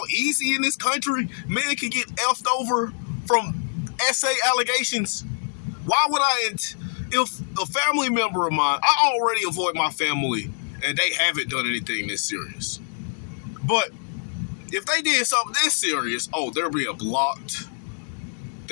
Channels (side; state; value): right; silent; digital silence